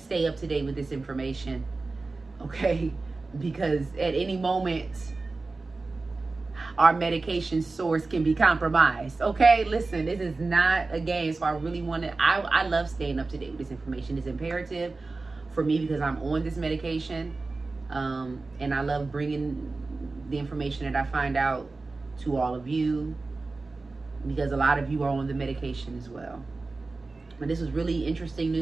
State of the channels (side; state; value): left; quieter; 3.6 dB